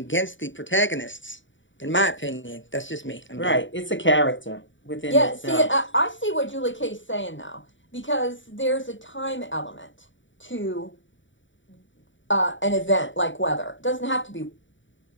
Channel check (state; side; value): late; right; 0.55 ms